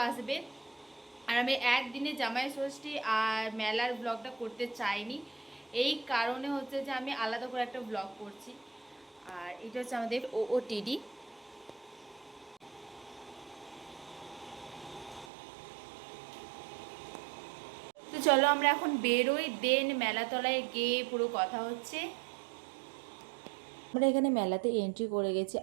আসবে। আর আমি একদিনে জামাই ষষ্ঠী আর মেলার ব্লগটা করতে চাইনি, এই কারণে হচ্ছে যে আমি আলাদা করে একটা ব্লগ করছি। আর এটা হচ্ছে আমাদের OOTD। তো চলো আমরা এখন বেরোই, দেন মেলাতলায় গিয়ে পুরো কথা হচ্ছে। আমরা এখানে মেলাতে এন্ট্রি করে গেছি,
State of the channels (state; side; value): drops out; left; at 15.3 s